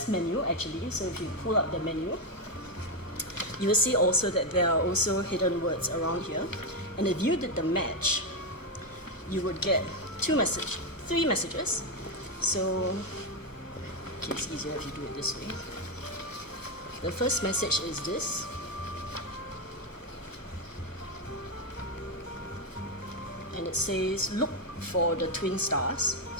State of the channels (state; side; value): late; right; 1.0 ms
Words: menu actually. So if you pull up the menu, you will see also that there are also hidden words around here. And if you did the match, you would get 3 messages. So okay, it's easier if you do it this way. The first message is this. And it says, "Look for the twin stars."